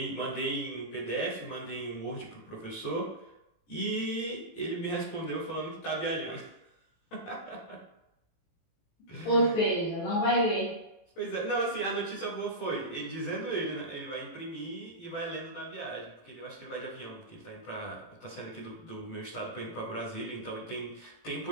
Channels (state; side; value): late; right; 18 ms